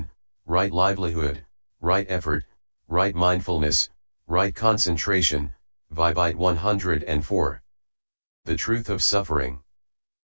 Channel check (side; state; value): both; inverted; correlation -1.00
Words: right livelihood, right effort, right mindfulness, right concentration, Vibite 104. The truth of suffering.